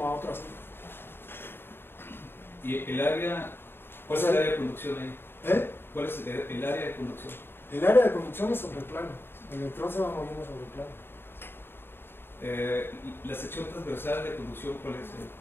a otro así. ¿Y el área? ¿Cuál es el área de conducción ahí? ¿Cuál es el área de conducción? El área de conducción es sobre el plano. El electrón se va moviendo sobre el plano. La sección transversal de conducción, ¿cuál es?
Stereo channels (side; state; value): right; late; 0.11 ms